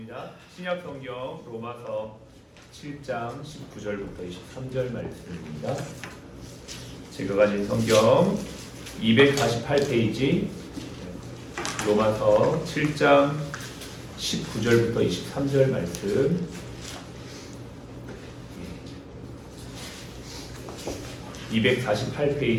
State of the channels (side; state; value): both; identical; correlation 1.00